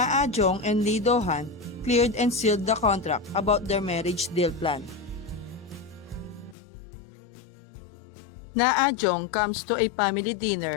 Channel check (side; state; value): right; drops out; at 6.6 s